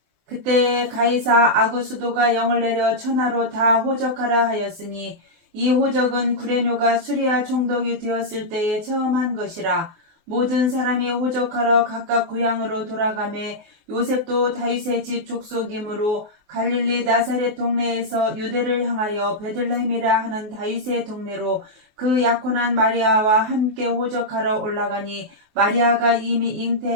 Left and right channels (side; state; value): left; late; 24 ms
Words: 그때 가이사 아구수도가 영을 내려 천하로 다 호적하라 하였으니 이 호적은 구레뇨가 수리아 총독이 되었을 때에 처음 한 것이라. 모든 사람이 호적하러 각각 고향으로 돌아가매 요셉도 다윗의 집 족속이므로 갈릴리 나사렛 동네에서 유대를 향하여 베들레헴이라 하는 다윗의 동네로 그 약혼한 마리아와 함께 호적하러 올라가니 마리아가 이미